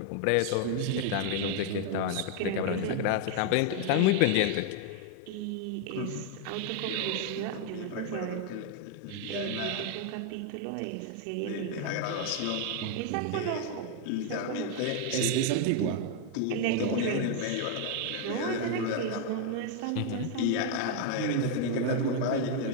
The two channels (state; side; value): different; both; correlation 0.00